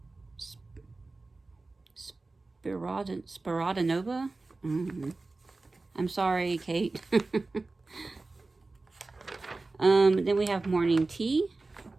Spiridnova? I'm sorry, Kate. Then we have Morning Tea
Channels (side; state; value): left; quieter; 3.4 dB